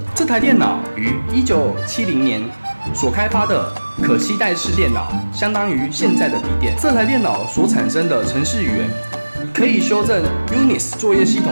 这台电脑于1970年所开发的可携带式电脑，相当于现在的笔电。这台电脑所产生的程式语言可以修正 Unix 作业系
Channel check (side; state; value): both; inverted; correlation -1.00